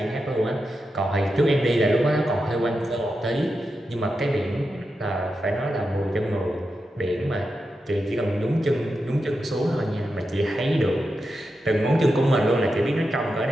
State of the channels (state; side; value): normal; both; correlation 0.88